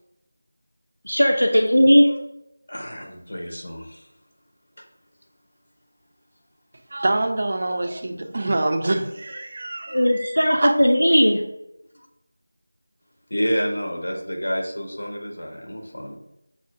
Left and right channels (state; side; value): inverted; both; correlation -0.99